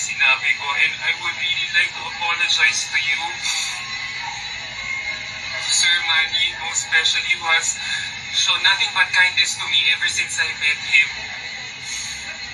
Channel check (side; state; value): both; identical; correlation 1.00